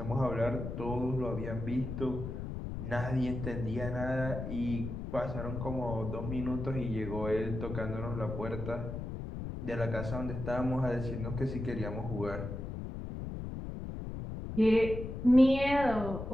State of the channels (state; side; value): noise; left; rumble, 6 dB below the sound